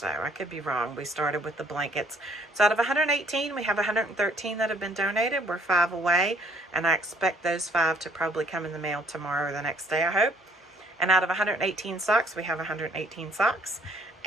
I could be wrong. We started with the blankets. So out of 118, we have 113 that have been donated. We're 5 away, and I expect those 5 to probably come in the mail tomorrow or the next day, I hope. And out of 118 socks, we have 118 socks.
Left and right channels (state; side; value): normal; both; correlation 0.61